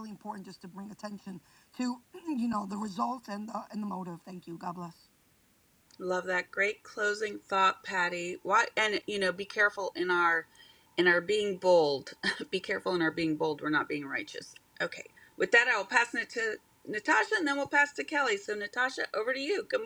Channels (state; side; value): identical; both; correlation 1.00